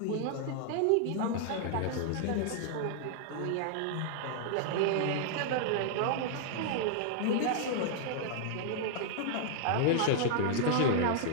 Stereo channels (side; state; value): both; different; correlation -0.01